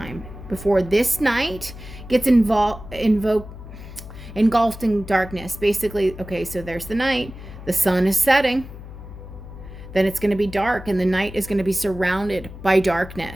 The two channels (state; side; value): noise; left; hum, 14 dB below the sound